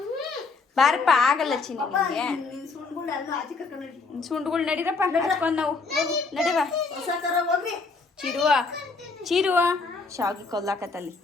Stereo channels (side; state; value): right; quieter; 4.2 dB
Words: ಬಾರಪ್ಪ, ಆಗಲ್ಲ ಚಿನ್ನಿ ನಿಮಗೆ. ಸುಂಡ್ಗಳು ಎಲ್ಲ ಆಚೆ ಕರ್ಕೊಂಡು ಸುಂಡ್ಗಳು ನಡೀರಪ್ಪ, ಹಚ್ಕೊಂಡು ನಾವು ನಡಿವ. ಹೊಸ ತರ ಹೋಗ್ರಿ. ಚಿರುವ ಶಾವಿಗೆ ಕೊಲ್ಲಾಕತ್ತಲ್ಲಿ